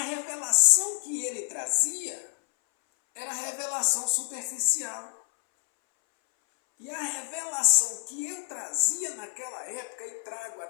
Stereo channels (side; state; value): right; silent; 59 dB below the other